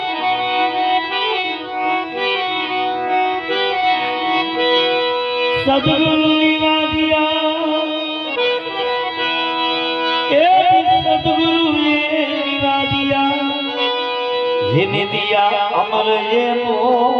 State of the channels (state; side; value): identical; both; correlation 1.00